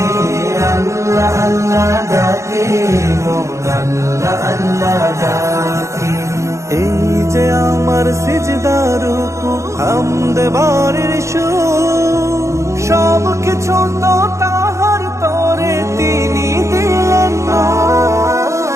আল্লাহ আল্লাহ ডাকে মন আল্লাহ আল্লাহ ডাকে। এই যে আমার সিজদার রুকু হামদ বারের সুর, সব কিছু তো তাহার তরে তিনি দিলেন না।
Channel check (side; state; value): left; late; 0.14 ms